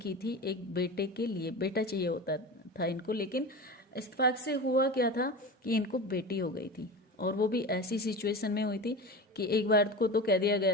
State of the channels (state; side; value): normal; both; correlation 0.29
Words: थी, एक बेटे के लिए बेटा चाहिए होता था इनको, लेकिन इत्तेफाक से हुआ क्या था कि इनको बेटी हो गई थी, और वो भी ऐसी सिचुएशन में हुई थी कि एक बार को तो कह दिया गया